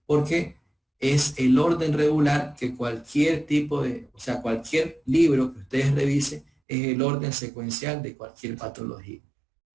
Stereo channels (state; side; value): drops out; left; at 6.5 s